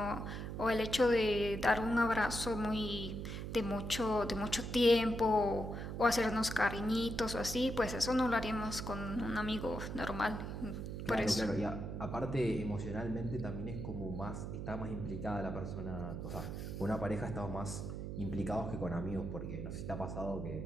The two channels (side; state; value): right; noise; hum, 6 dB below the sound